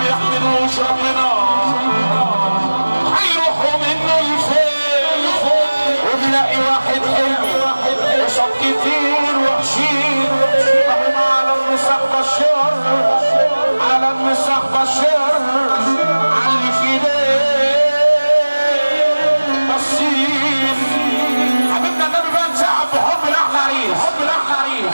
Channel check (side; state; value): both; inverted; correlation -1.00